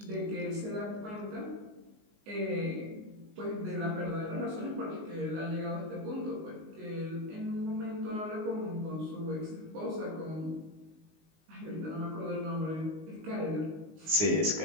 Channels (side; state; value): left; late; 19 ms